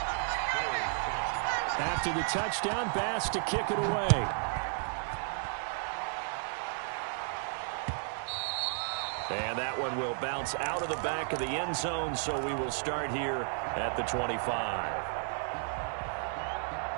After the touchdown, Bass to kick it away. And that one will bounce out of the back of the end zone, so we will start here at the 25.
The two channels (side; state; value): left; silent; 56 dB below the other